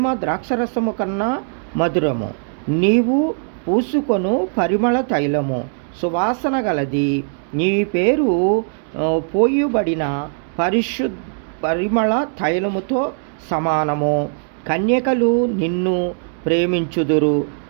ద్రాక్షరసము కన్నా మధురము. నీవు పూసుకొను పరిమళ తైలము సువాసన గలది. నీ పేరు పోయబడిన పరిమళ తైలముతో సమానము. కన్యకలు నిన్ను ప్రేమించుదురు,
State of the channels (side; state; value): left; silent; digital silence